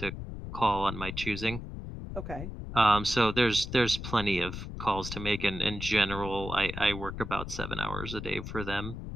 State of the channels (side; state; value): left; noise; rumble, 8 dB below the sound